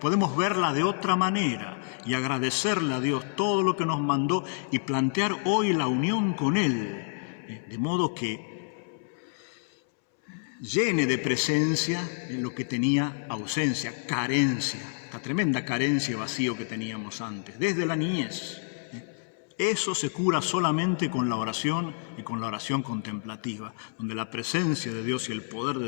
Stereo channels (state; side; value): silent; right; 59 dB below the other